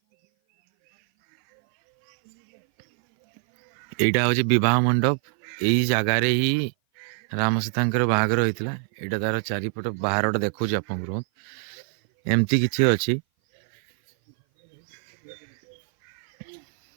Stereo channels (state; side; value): silent; left; 57 dB below the other